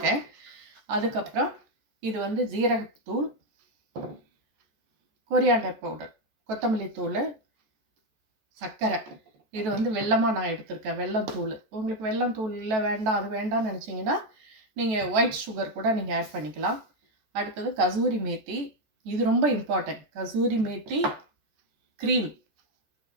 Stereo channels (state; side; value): late; left; 14 ms